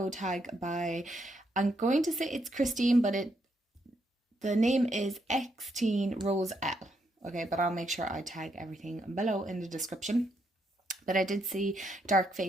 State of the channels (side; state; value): both; normal; correlation 0.77